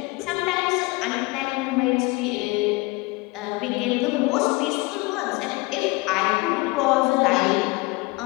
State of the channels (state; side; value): quieter; right; 24.3 dB